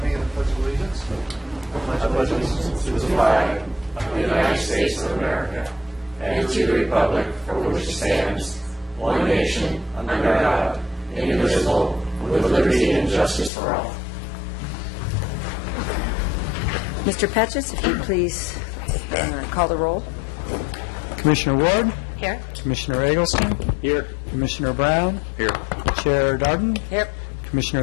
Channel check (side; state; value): right; drops out; at 13.5 s